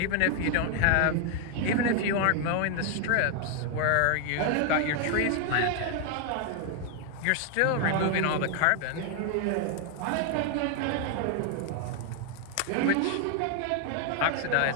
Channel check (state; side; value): different; both; correlation 0.00